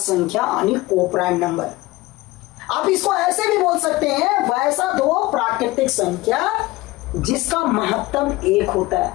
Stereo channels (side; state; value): right; quieter; 19.8 dB